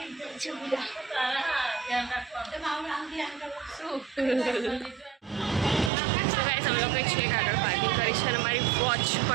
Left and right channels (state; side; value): drops out; left; at 5.9 s